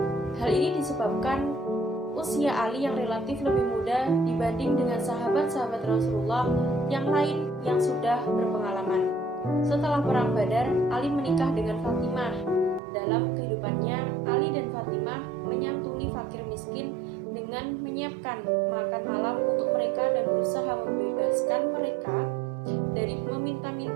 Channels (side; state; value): left; drops out; at 12.8 s